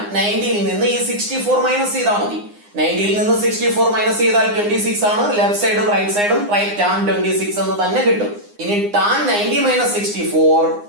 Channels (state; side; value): late; left; 9.8 ms